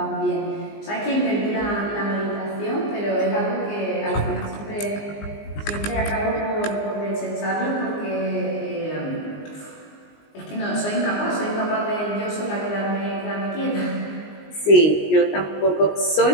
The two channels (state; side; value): late; right; 19 ms